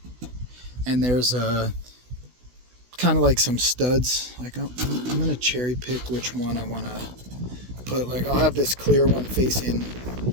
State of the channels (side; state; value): left; late; 16 ms